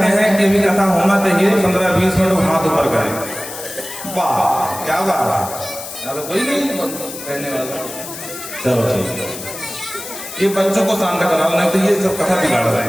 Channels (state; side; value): noise; left; hiss, 11 dB below the sound